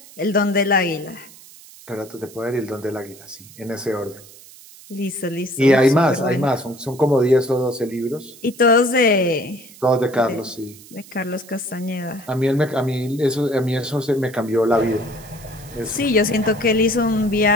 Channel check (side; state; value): right; noise; hiss, 21 dB below the sound